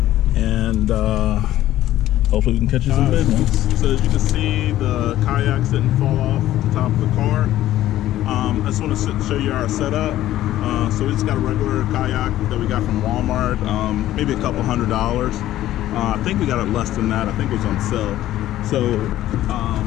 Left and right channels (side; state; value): right; quieter; 13.9 dB